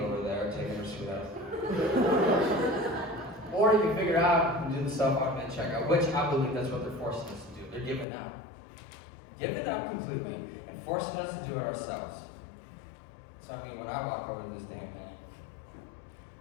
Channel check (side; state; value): right; drops out; at 8.1 s